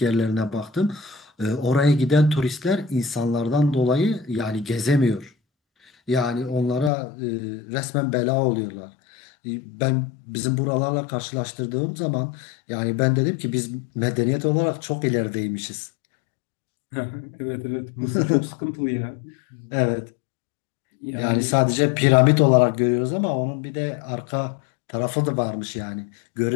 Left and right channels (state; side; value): drops out; right; at 6.9 s